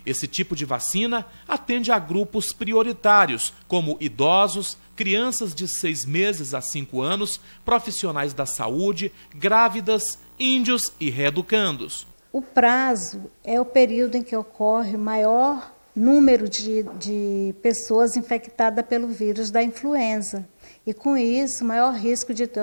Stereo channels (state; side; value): inverted; both; correlation -1.00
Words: Esse tipo de vacina atende a grupos prioritários, como idosos, crianças de 6 meses a 5 anos, profissionais da saúde, grávidas, índios e reeducandos. O prazo é o período em que ocorre maior número de pessoas infectadas pelo vírus da influenza. E com isso, maior risco de ter